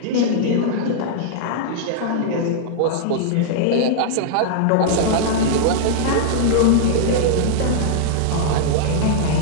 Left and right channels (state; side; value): different; both; correlation -0.01